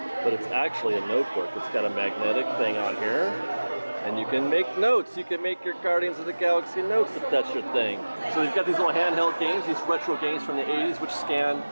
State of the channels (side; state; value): both; inverted; correlation -1.00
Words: but it's actually a notebook. It's got a magnetic thing on here, and you can make notes. You can make your Guardians of the Galaxy notes if that's your thing. So they've got these little handheld games, these retro games from the 80s, which scan,